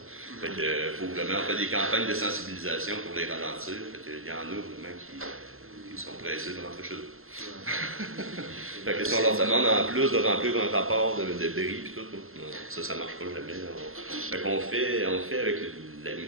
Fait que, faut vraiment faire des campagnes de sensibilisation pour les ralentir. Fait que, il y en a vraiment qui sont pressés de rentrer chez eux. Fait que si on leur demande en plus de remplir un rapport de bris et tout, non, ça ne marche pas jamais. Fait qu'on fait avec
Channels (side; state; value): left; late; 0.61 ms